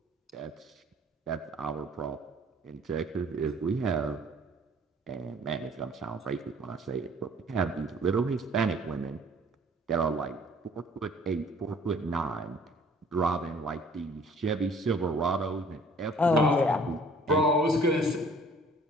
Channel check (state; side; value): normal; both; correlation 0.55